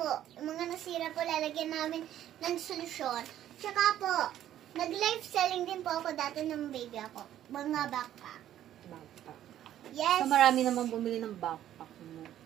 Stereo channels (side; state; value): left; quieter; 11.8 dB